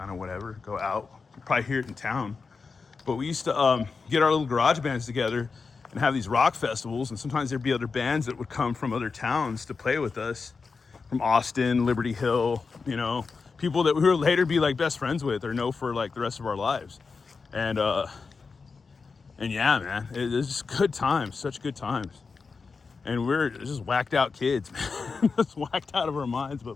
of whatever, go out. You'd probably hear it in town. But we used to get our little garage bands together and have these rock festivals. And sometimes there'd be other bands that would come from other towns to play with us. From Austin, Liberty Hill, people that we would later be like best friends with or know for like the rest of our lives. And yeah, man, it was just good times, such good times. And we're just whacked out kids, man. Just whacked out of our minds,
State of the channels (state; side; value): quieter; right; 4.8 dB